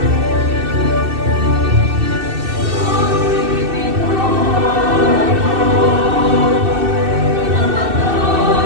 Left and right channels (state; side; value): late; left; 2.7 ms